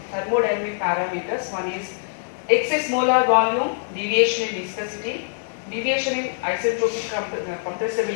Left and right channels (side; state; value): right; silent; digital silence